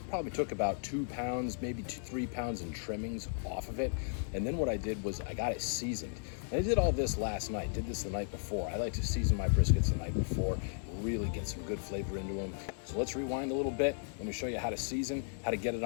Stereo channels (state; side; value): silent; right; digital silence